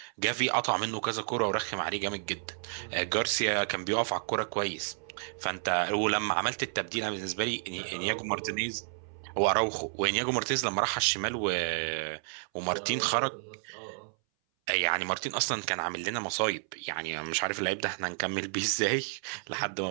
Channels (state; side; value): silent; left; 57 dB below the other